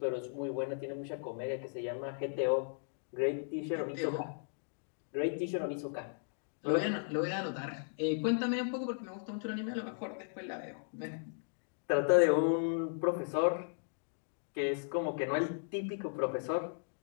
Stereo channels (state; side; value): silent; right; digital silence